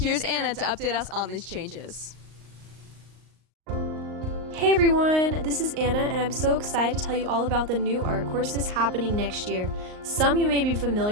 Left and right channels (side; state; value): left; late; 38 ms